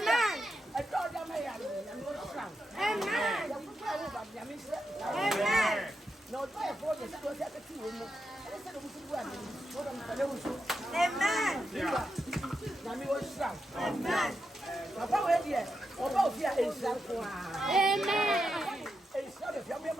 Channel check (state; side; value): normal; both; correlation 0.86